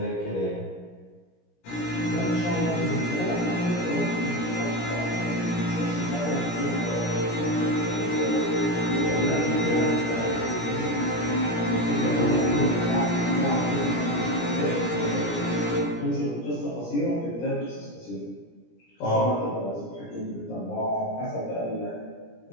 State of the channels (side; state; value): right; late; 17 ms